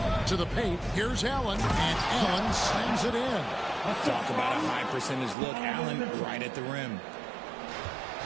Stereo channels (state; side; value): drops out; left; at 5.4 s